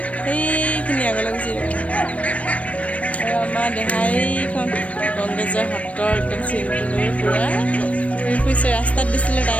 সেইখিনি আগলৈ গুচি যাব আৰু আমাৰ দেহাইখন কংগ্ৰেছৰ হাতৰ একদম চিনটো লৈ পূৰা ঘূৰি ফুৰিছে ৰাস্তাত দিছিলে তাই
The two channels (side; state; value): right; late; 0.065 ms